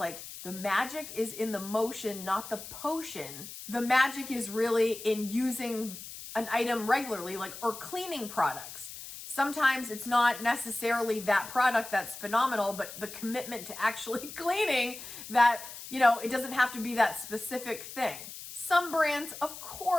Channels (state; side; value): noise; left; hiss, 12 dB below the sound